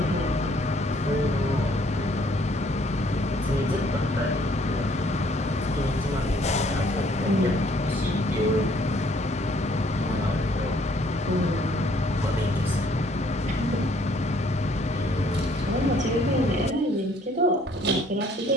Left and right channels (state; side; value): normal; both; correlation 0.62